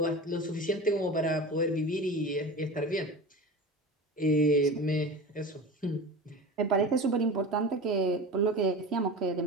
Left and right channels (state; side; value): normal; both; correlation 0.31